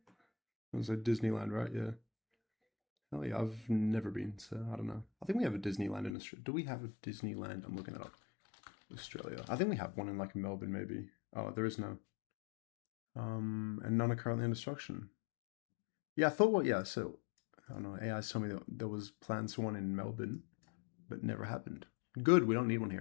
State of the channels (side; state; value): right; drops out; at 6.2 s